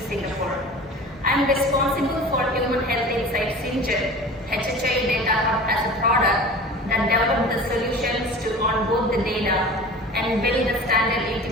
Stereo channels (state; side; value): normal; both; correlation 0.38